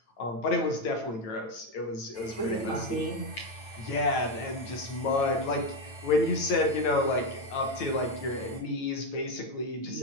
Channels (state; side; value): late; right; 9.0 ms